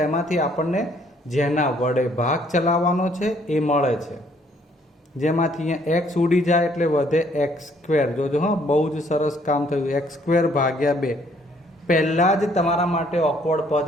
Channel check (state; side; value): normal; both; correlation 0.64